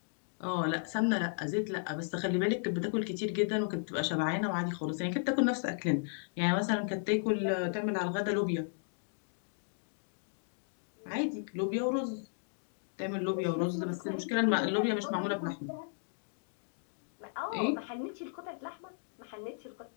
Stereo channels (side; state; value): right; silent; digital silence